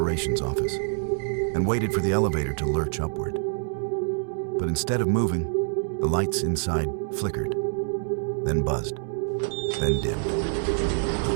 office, and waited for the elevator to lurch upward. But instead of moving, the lights inside flickered, then buzzed, then dimmed. The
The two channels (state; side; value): silent; left; digital silence